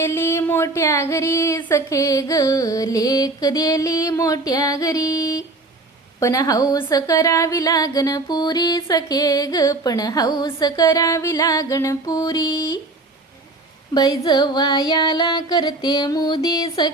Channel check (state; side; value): quieter; left; 3.1 dB